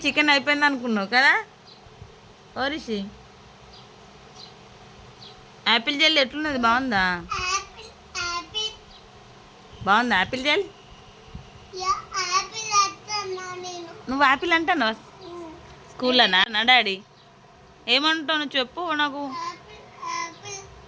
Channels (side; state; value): both; identical; correlation 1.00